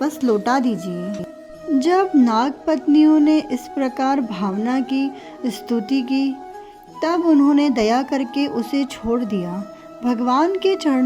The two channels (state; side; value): identical; both; correlation 1.00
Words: लौटा दीजिए। जब नाग पत्नियों ने इस प्रकार भावना की स्तुति की, तब उन्होंने दया करके उसे छोड़ दिया। भगवान के